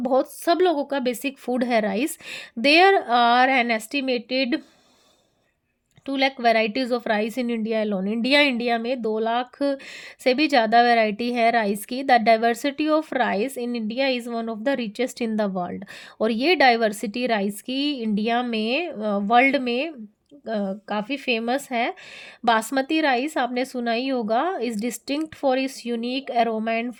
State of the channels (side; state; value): both; identical; correlation 1.00